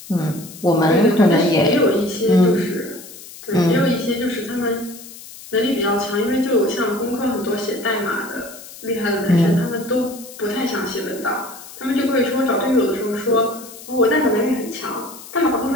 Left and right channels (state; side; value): noise; left; hiss, 16 dB below the sound